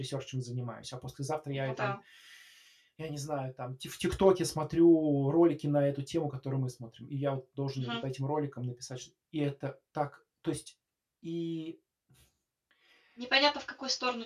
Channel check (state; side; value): identical; both; correlation 1.00